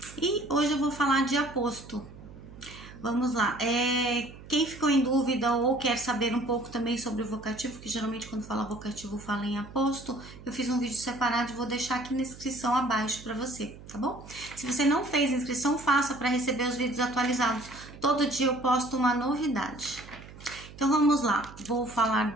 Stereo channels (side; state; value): right; noise; hum, 17 dB below the sound